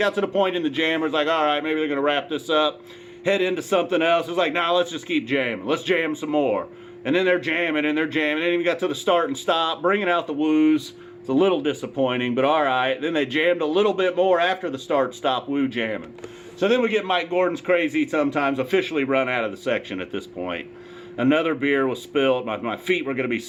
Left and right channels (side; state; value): both; identical; correlation 1.00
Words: to the point in the jammers, like, all right, maybe they're going to wrap this up, head into something else. It's like, nah, let's just keep jamming. Let's jam some more. And then they're jamming, and they're jamming. Then we got to the start and stop, bringing out the woos. It's a little disappointing, but all right. Then they jammed a little bit more after the start-stop woo jamming. So then we get Mike Gordon's Crazy Sometimes officially run out of the section at this point. Another beer was spilled. My feet were going to be